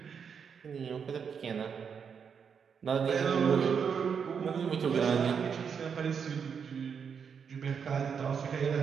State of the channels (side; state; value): left; quieter; 6.7 dB